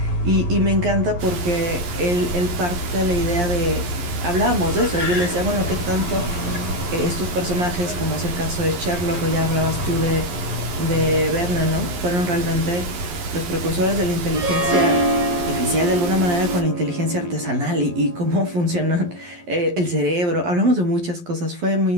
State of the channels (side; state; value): left; late; 11 ms